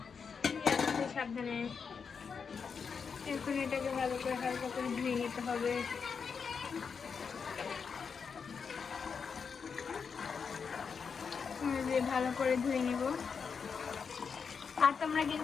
সাবধানে এখন এটাকে ভালো করে হালকা করে ধুয়ে নিতে হবে। ভালো করে ধুয়ে নিব। আর তোমরা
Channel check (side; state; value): right; quieter; 5.9 dB